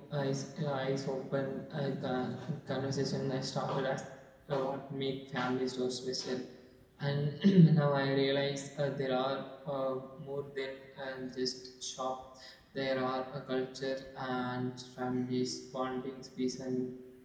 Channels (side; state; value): both; identical; correlation 1.00